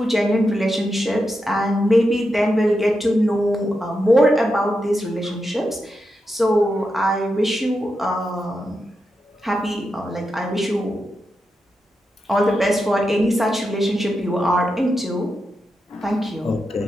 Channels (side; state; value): both; normal; correlation 0.87